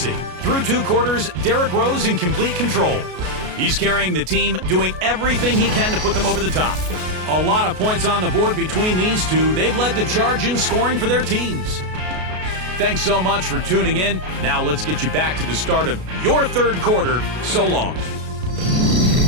Through 2 quarters, Derrick Rose in complete control. He's carrying the team, doing everything he can to put them over the top. A lot of points on the board between these two. They've led the charge in scoring for their teams. Thanks so much for tuning in. Now let's get you back to the start of your third quarter. So long.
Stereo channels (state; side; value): late; left; 33 ms